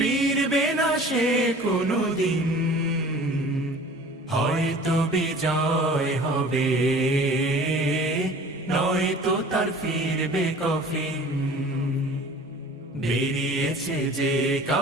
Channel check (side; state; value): both; normal; correlation 0.45